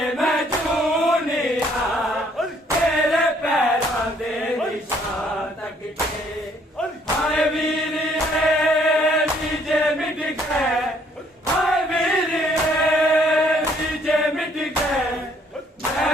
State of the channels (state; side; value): normal; both; correlation 0.64